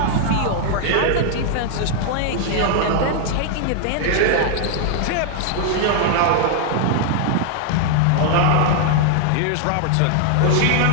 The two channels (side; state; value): both; different; correlation 0.00